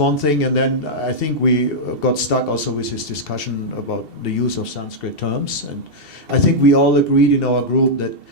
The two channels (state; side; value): late; right; 2.7 ms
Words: thing, and then I think we got stuck also with this discussion about the use of Sanskrit terms, and I think we all agreed in our group that